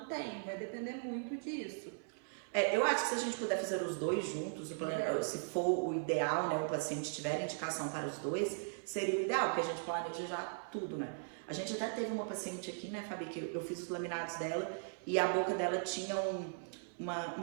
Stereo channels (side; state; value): left; silent; 52 dB below the other